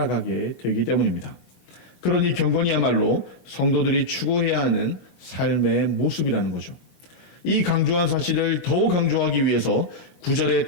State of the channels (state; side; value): late; right; 22 ms